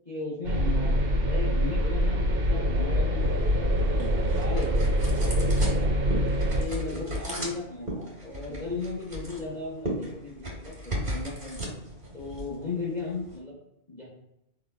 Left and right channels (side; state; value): left; late; 2.5 ms